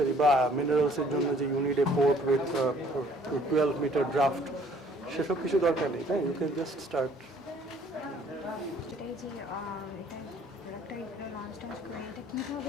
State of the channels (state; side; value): normal; both; correlation 0.59